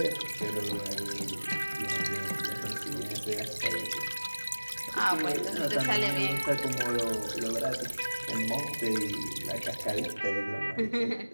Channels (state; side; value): inverted; both; correlation -1.00